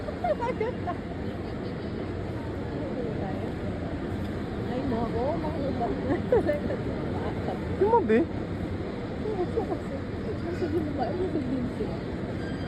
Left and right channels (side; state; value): both; identical; correlation 1.00